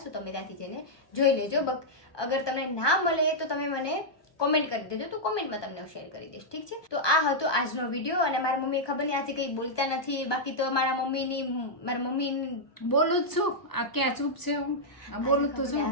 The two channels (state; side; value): late; right; 1.2 ms